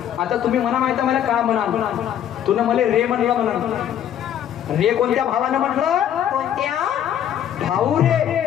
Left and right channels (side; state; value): right; quieter; 10.2 dB